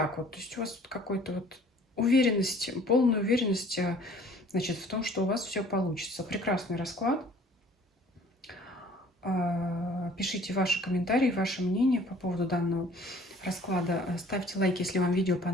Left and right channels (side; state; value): both; normal; correlation 0.52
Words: вот. То есть у вас тут какой-то вот уверенность, полная уверенность, значит, в том, что у вас все получится. Прекрасный расклад. Пишите ваши комментарии, ваше мнение по поводу данного расклада. Ставьте лайк, если вам видео